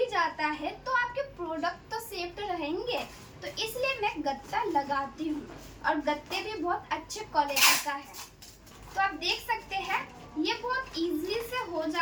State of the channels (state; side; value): identical; both; correlation 1.00